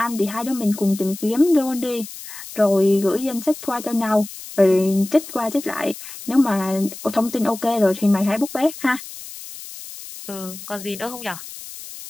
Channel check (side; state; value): left; noise; hiss, 13 dB below the sound